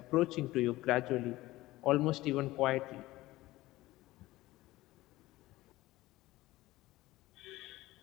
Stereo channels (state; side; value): quieter; right; 17.8 dB